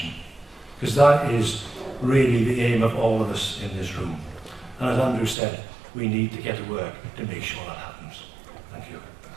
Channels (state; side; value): drops out; left; at 5.4 s